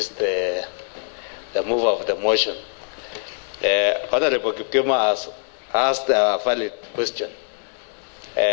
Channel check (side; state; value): right; silent; digital silence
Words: the mover of the motion. Honorable Kipkema has asked a valid question.